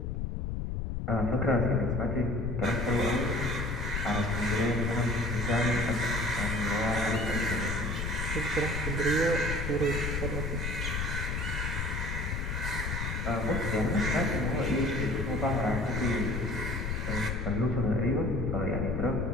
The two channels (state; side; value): noise; left; rumble, 2 dB below the sound